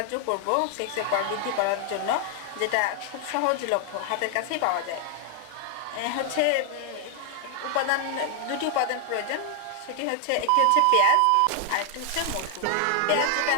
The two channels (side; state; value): both; different; correlation 0.00